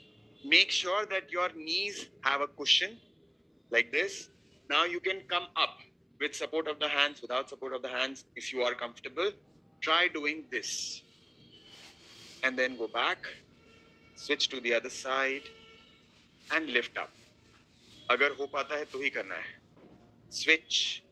Make sure that your knees have a cushion like this. Now you can come up with support of the hands, without support of the hands. If you are comfortable, try doing this. And then go back, switch to the other side and lift up. अगर हो पाता है तो ही करना है. Switch,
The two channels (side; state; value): both; identical; correlation 1.00